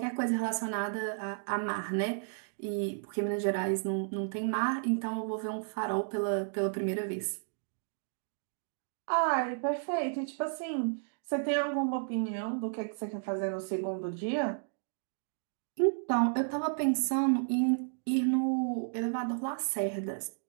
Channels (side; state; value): left; silent; digital silence